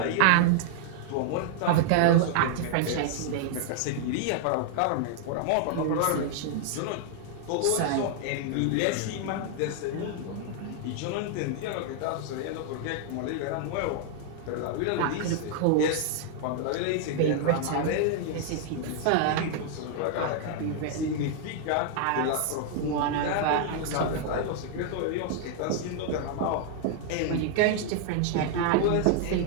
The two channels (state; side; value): different; both; correlation 0.00